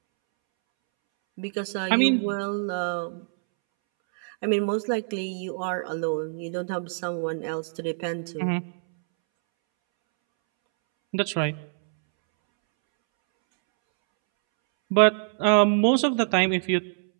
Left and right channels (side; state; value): left; silent; 62 dB below the other